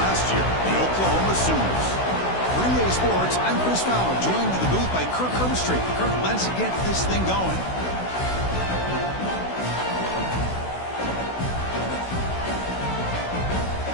year, the Oklahoma Sooners. 3A Sports, I'm Chris Fowler, joined in the booth by Kirk Herbstreit. Kirk, let's get this thing going.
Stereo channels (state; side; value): late; right; 16 ms